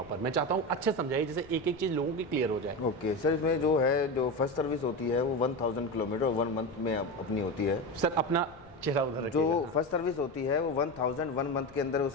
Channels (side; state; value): left; noise; rumble, 24 dB below the sound